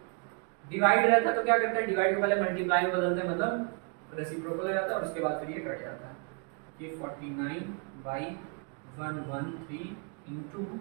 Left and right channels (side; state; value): left; quieter; 36.0 dB